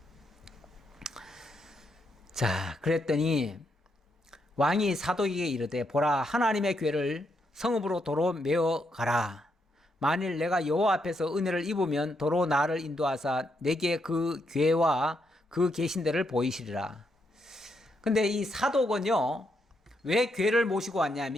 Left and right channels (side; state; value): both; normal; correlation 0.79